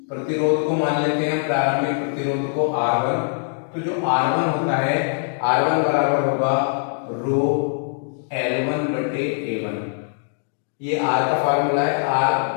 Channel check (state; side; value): silent; right; digital silence